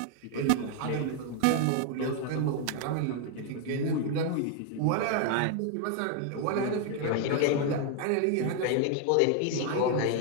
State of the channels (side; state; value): both; different; correlation 0.00